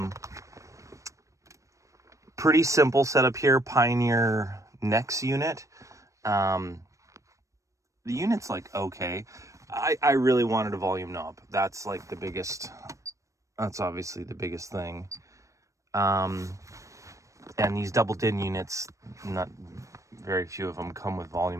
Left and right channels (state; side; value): late; left; 0.15 ms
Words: Pretty simple setup here. Pioneer Nex unit. The unit's like okay. I really wanted a volume knob. That's like the biggest. That's obviously the biggest thing. And these double DIN units, not very few of them come with